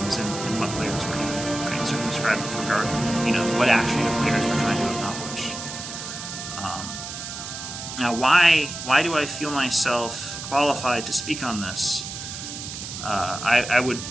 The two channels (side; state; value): right; noise; hiss, 8 dB below the sound